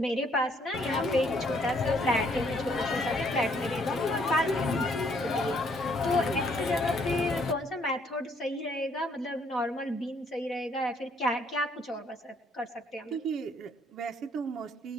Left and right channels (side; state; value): both; normal; correlation 0.66